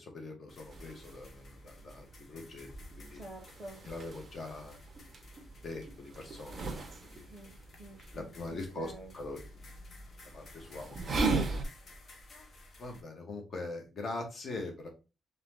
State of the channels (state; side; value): normal; both; correlation 0.70